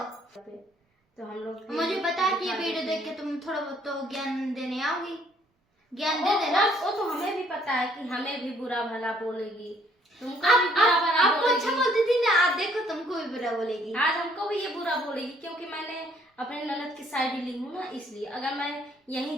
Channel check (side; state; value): both; normal; correlation 0.64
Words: तो हम लोग मुझे पता है कि ये वीडियो देख के तुम थोड़ा बहुत तो ज्ञान देने आओगी, ज्ञान दे देना। वो तो हमें भी पता है कि हमें भी बुरा भला बोलेगी, तुमको भी आप बुरा भला आपको अच्छा बोलेगी। बोलती थी ना, आप देखो तुमको भी बुरा बोलेगी। आज हमको भी ये बुरा बोलेगी, क्योंकि मैंने अपने ननद की साइड ली हूँ ना, इसलिए। अगर मैं यही